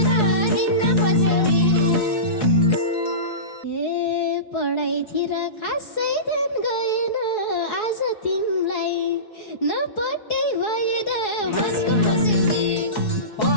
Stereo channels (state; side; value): late; right; 4.7 ms